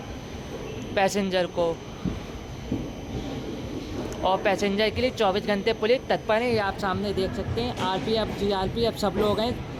पैसेंजर को। और पैसेंजर के लिए 24 घंटे पुलिस तत्पर है। ये आप सामने देख सकते हैं, आरपीएफ जीआरपीएफ सब लोग हैं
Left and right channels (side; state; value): both; identical; correlation 1.00